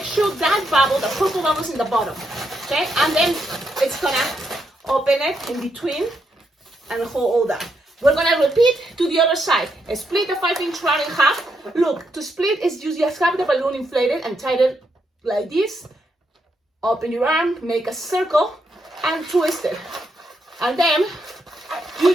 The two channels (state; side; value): normal; both; correlation 0.80